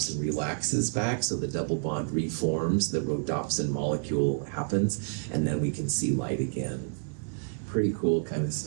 relaxes back, so the double bond reforms, the rhodopsin molecule happens, and then we can see light again. Pretty cool kind of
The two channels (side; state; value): left; silent; digital silence